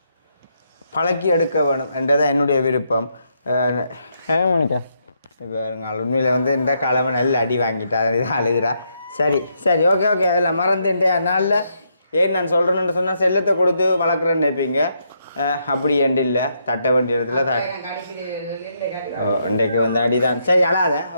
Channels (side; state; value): both; inverted; correlation -0.77